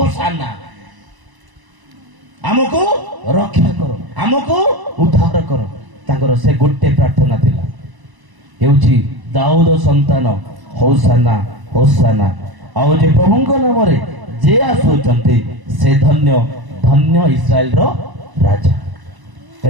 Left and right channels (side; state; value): left; late; 1.0 ms